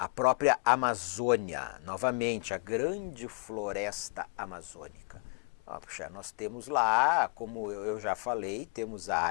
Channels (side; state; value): right; quieter; 34.6 dB